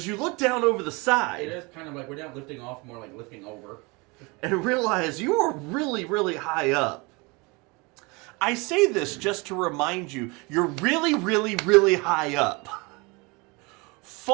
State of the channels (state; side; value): quieter; left; 27.4 dB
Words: you look down over the It side is kind of like we're not lifting off, more like lifting over. and realize you are really, really high up. I say this just to remind you, you're really, really, really high up.